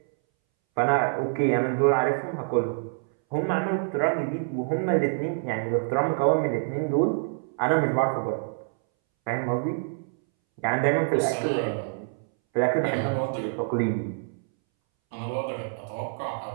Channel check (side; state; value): left; silent; 61 dB below the other